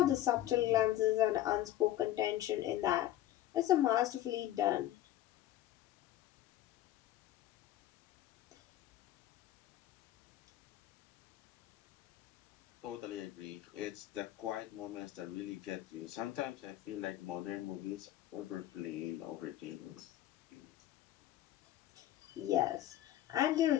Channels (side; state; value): right; quieter; 13.6 dB